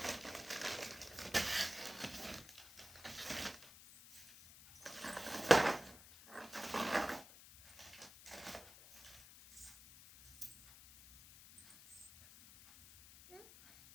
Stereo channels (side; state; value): left; noise; hiss, 18 dB below the sound